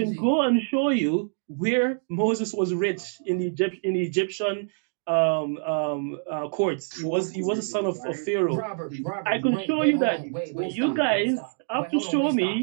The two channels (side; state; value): left; silent; digital silence